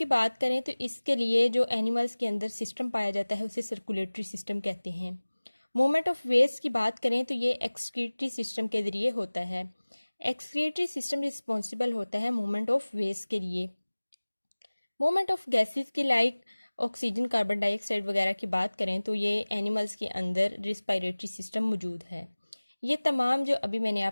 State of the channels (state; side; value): inverted; both; correlation -1.00